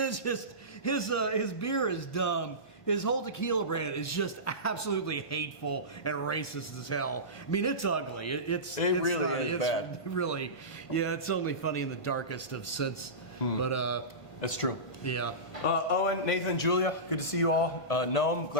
just his beer is dumb. His whole tequila brand is just absolutely hateful and racist as hell. I mean, it's ugly. It's really is bad. Really, yeah. It's only funny in the darkest of sense. But That's true. yeah. Owen, Nathan, Julia, good to see you all. Noam,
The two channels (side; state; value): right; late; 1.5 ms